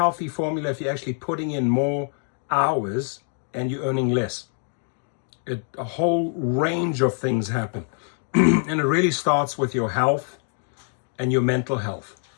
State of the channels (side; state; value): right; silent; 58 dB below the other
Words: formula if you're actually putting in more hours and you're earning less. A whole range of things happen. And it really starts with your health and your mental health.